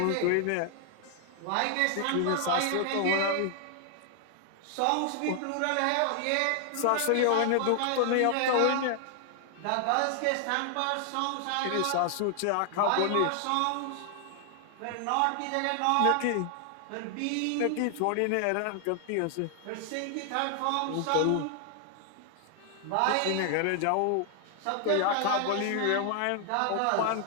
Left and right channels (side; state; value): both; different; correlation 0.00